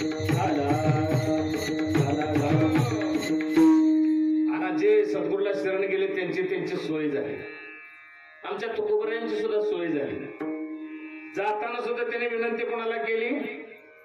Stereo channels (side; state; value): both; identical; correlation 1.00